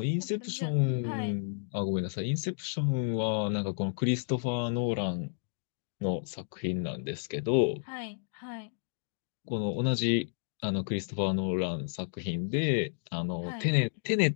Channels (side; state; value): right; silent; digital silence